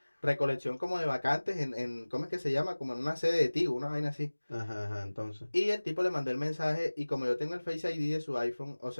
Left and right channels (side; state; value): both; inverted; correlation -1.00